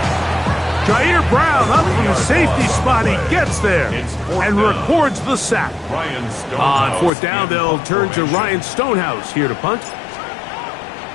Jair Brown up from the safety spot. He gets there and records the sack. On fourth down, they'll turn to Ryan Stonehouse here to punt.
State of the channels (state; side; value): drops out; right; at 7.1 s